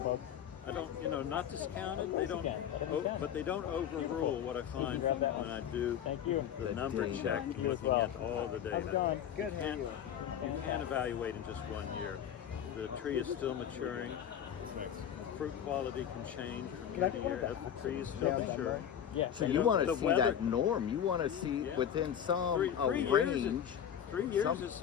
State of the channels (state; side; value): quieter; right; 9.3 dB